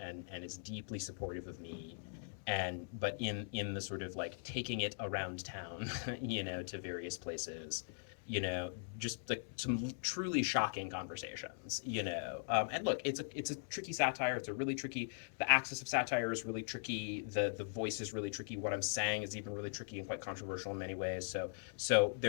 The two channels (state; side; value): silent; right; digital silence